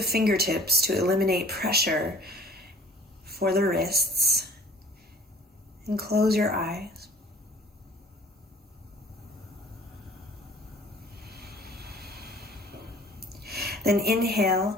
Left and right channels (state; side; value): normal; both; correlation 0.51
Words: fingertips to eliminate pressure for the wrists. And close your eyes. Then